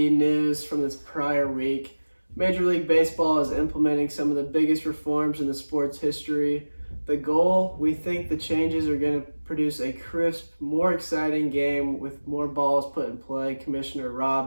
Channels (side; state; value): both; inverted; correlation -1.00